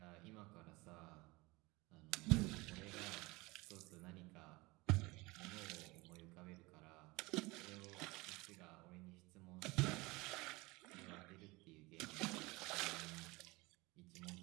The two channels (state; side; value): quieter; left; 23.2 dB